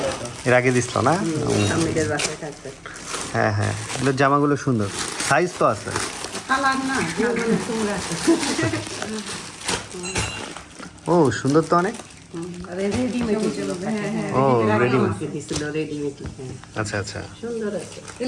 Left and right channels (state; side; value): identical; both; correlation 1.00